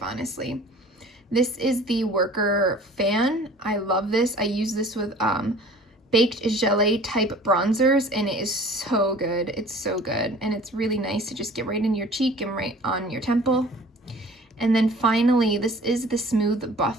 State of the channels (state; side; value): normal; both; correlation 0.47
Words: This is the Worker Fan. I love this. I use this with baked gelée type bronzers, and it is so good. It's so good, and it's really nice to just get right in your cheek and right on your temple. And then finally, this is the Smooth